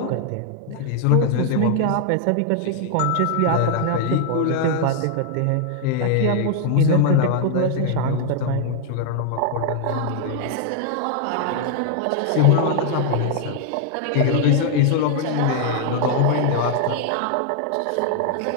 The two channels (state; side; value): different; both; correlation 0.00